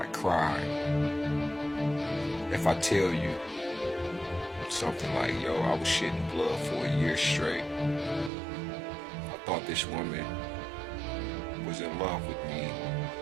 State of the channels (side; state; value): left; drops out; at 8.3 s